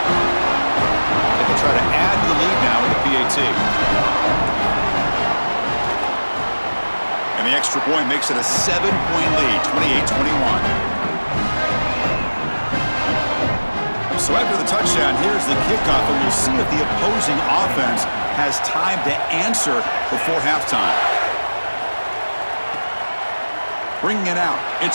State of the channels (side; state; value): both; inverted; correlation -1.00